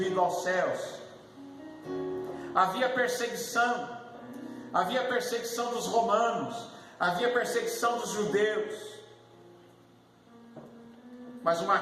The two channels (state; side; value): identical; both; correlation 1.00